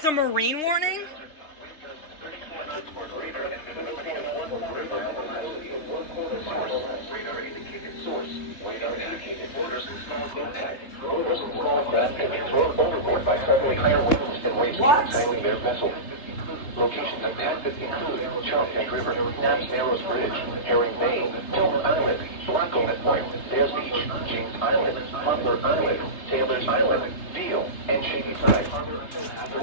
a marine warning? What? Locations of Texas include Chesapeake River, Naps Narrows Bridge, Herring Bay, Tillman Island, Blackcomet Point, Bears Beach, James Island, Butler Island, Taylor's Island, Deal, and Shady Side.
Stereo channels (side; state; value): right; late; 3.3 ms